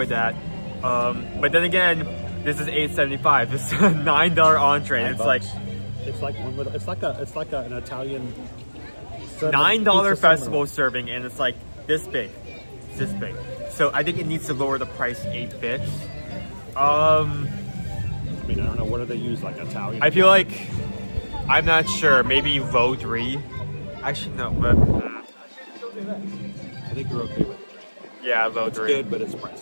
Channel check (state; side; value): inverted; both; correlation -1.00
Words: that. But then again, this is $8.75. This is a $9 entree. And it's like an Italian $9 festival serving, and it's like this big. It's this big. So I think it needs to lower the price 8 bits. I mean, I don't know, what do they use, like Italian? I feel like, I'm not sure, maybe low 3. Actually, no, but... I think you're okay with it. Yeah, low 3. It's good, but it's